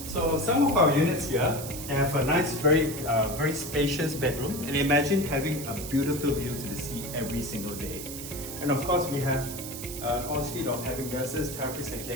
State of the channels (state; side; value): noise; right; hiss, 9 dB below the sound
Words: So some of our units here have a nice, very spacious bedroom, and imagine having a beautiful view to the sea every single day. And of course we have an ensuite of having nurses, therapists and